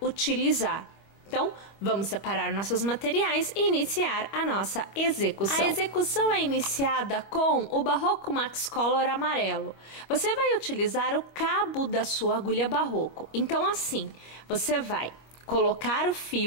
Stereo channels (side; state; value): right; late; 25 ms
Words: utilizar. Então, vamos separar nossos materiais e iniciar a nossa execução. A execução é iniciada com o Barroco Max Color amarelo. Você vai utilizar o cabo da sua agulha Barroco. Então, assim, você vai colocar o